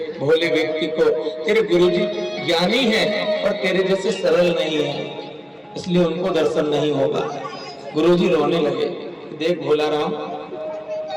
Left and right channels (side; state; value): both; identical; correlation 1.00